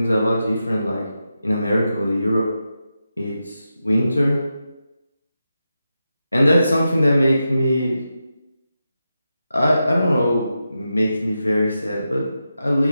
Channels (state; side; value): inverted; both; correlation -0.89